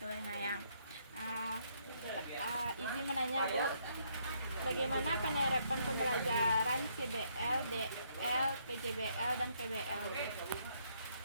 Lengayang. Izin menanya, Bu, bagaimana penerapan pembelajaran CBL, DL, PJBL, dan PBL, Bu?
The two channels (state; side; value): inverted; both; correlation -0.71